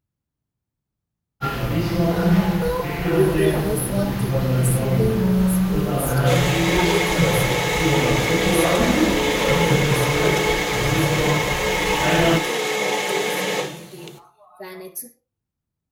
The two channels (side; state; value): both; identical; correlation 1.00